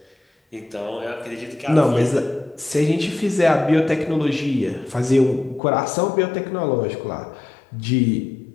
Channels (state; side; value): drops out; right; at 5.6 s